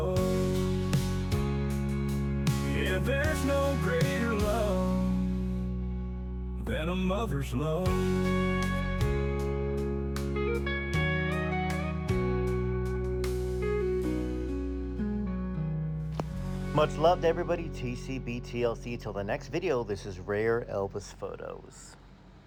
Yeah, there's no greater love than a mother's love. Much love to everybody. TCB TLC. Till the next video, this is Rare Elvis Photos.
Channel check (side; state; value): both; identical; correlation 1.00